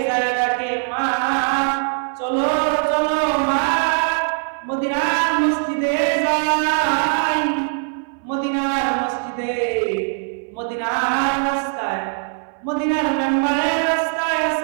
যায় ডাকে, মা চলো চলো মা, মদিনার মসজিদে যাই, মদিনার মসজিদে, মদিনার রাস্তায়, মদিনার মেম্বারের রাস্তায়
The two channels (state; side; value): silent; left; 60 dB below the other